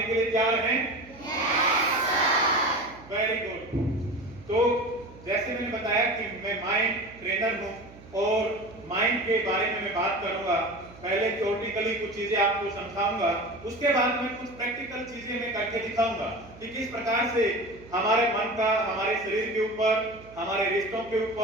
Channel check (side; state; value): right; noise; hum, 20 dB below the sound